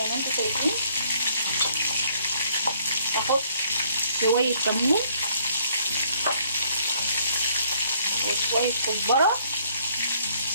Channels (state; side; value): inverted; both; correlation -0.64